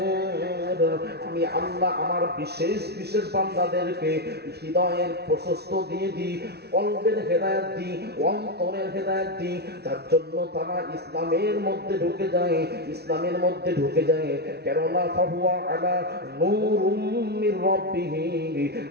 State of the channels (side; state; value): left; late; 0.48 ms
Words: আমি আল্লাহ আমার বিশেষ বিশেষ বান্দাদেরকে হৃদয়ের প্রশস্ত দিয়ে দিই, কলবের হেদায়েত দিই, অন্তরের হেদায়েত দিই, যার জন্য তারা ইসলামের মধ্যে ঢুকে যায়। কেননা ফাহুয়া আলা নূরুম মির রাব্বিহি,